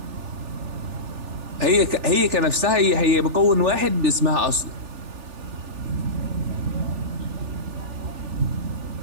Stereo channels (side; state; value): left; late; 3.4 ms